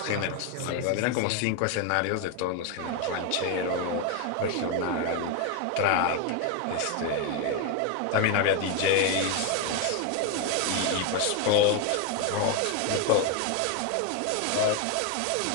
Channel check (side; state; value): both; different; correlation 0.02